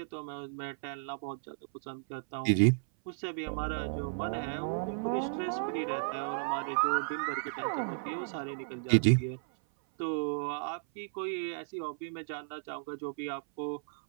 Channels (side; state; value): left; silent; 55 dB below the other